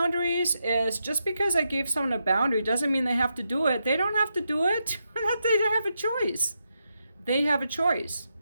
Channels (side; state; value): both; inverted; correlation -0.84